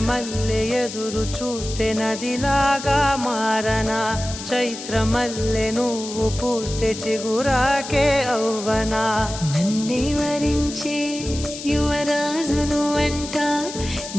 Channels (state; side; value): noise; left; hiss, 10 dB below the sound